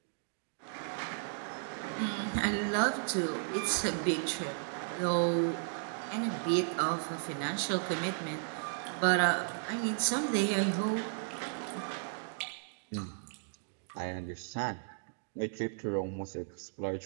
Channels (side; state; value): left; silent; digital silence